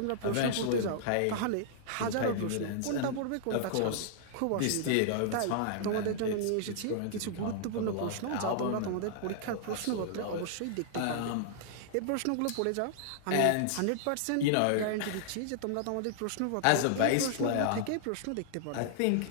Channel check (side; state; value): both; different; correlation -0.01